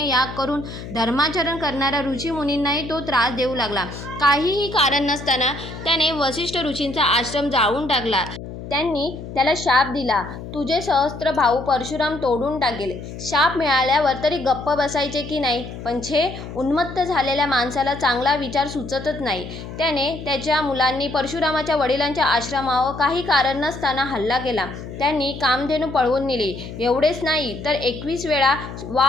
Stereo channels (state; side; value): noise; left; hum, 11 dB below the sound